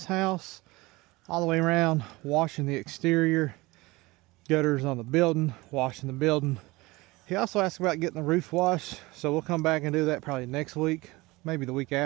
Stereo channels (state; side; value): quieter; left; 21.8 dB